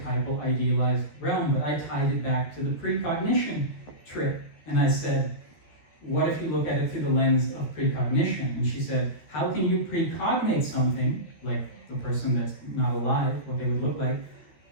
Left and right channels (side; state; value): right; late; 13 ms